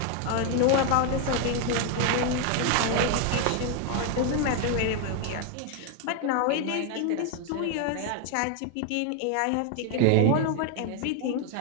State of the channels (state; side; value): different; both; correlation 0.01